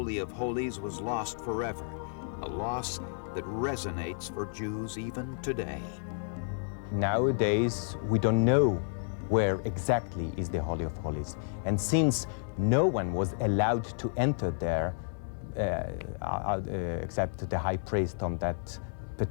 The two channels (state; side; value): silent; right; digital silence